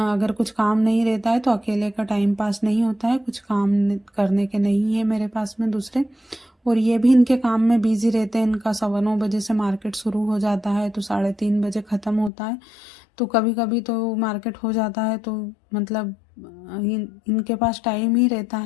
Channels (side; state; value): right; drops out; at 12.3 s